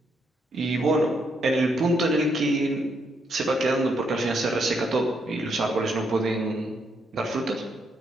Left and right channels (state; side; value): normal; both; correlation 0.76